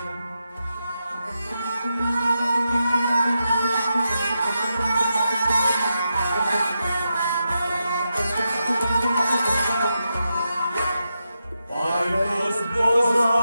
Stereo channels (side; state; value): both; inverted; correlation -0.87